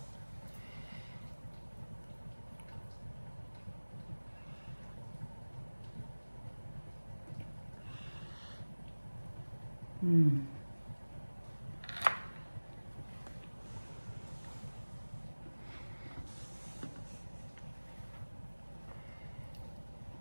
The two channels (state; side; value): inverted; both; correlation -1.00